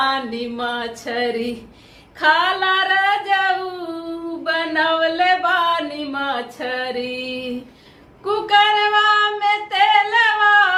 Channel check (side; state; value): both; identical; correlation 1.00